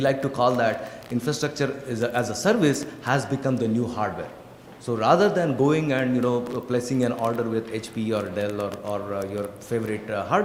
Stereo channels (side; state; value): both; identical; correlation 1.00